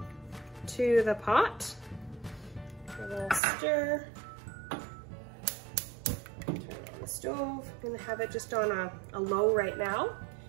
to the pot. A little stir. Turn on the stove. I'm gonna have it just on a low right now.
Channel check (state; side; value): drops out; left; at 3.4 s